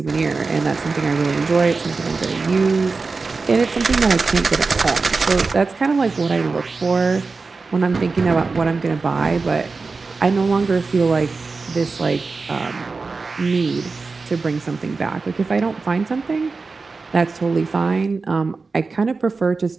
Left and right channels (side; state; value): left; quieter; 4.2 dB